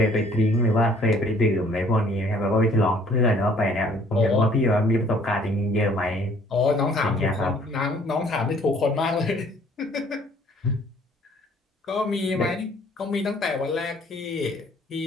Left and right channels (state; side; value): normal; both; correlation 0.58